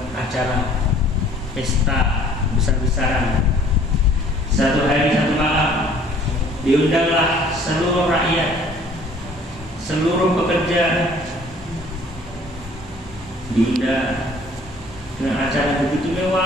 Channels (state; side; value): normal; both; correlation 0.55